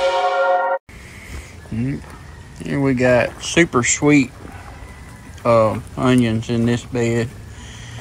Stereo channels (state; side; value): identical; both; correlation 1.00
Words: Here we got super sweet onions in this bed,